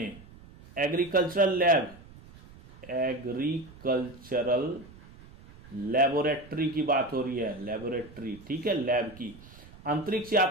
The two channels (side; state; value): right; noise; rumble, 21 dB below the sound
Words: लेबोरेटरी की बात हो रही है, लेबोरेटरी, ठीक है, लैब की, अंतरिक्ष